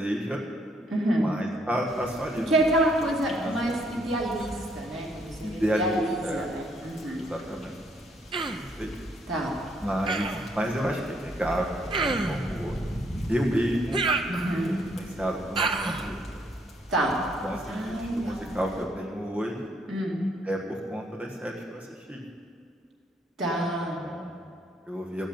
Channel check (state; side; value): normal; both; correlation 0.69